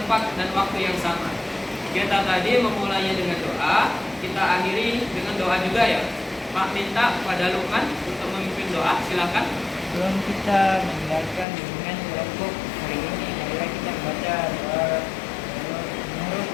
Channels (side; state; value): right; drops out; at 11.5 s